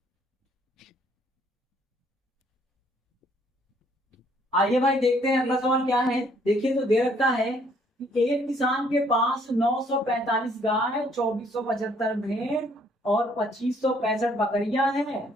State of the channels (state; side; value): normal; both; correlation 0.64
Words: आइए भाई देखते हैं अगला सवाल क्या है। देखिए तो दे रखा है कि एक किसान के पास 945 गाय, 2475 भेड़ और 2565 बकरियां